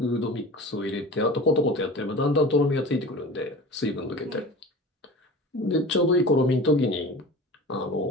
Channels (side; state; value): both; normal; correlation 0.36